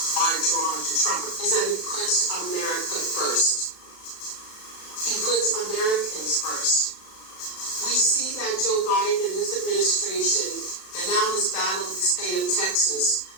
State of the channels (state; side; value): late; right; 36 ms